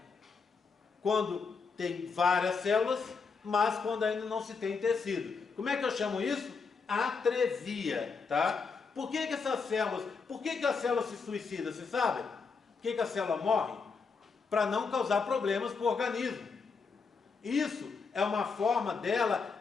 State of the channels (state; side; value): quieter; right; 5.0 dB